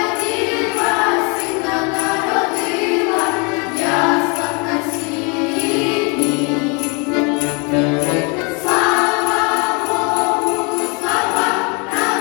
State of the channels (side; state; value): right; quieter; 32.3 dB